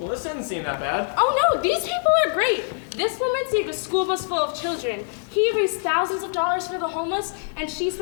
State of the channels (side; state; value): right; silent; 63 dB below the other